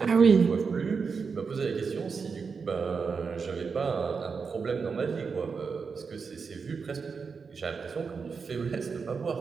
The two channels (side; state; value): left; quieter; 5.3 dB